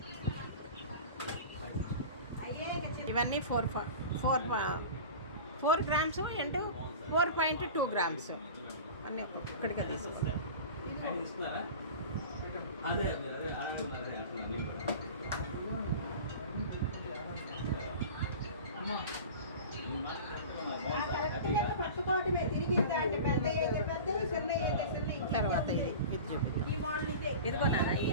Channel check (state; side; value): inverted; both; correlation -0.36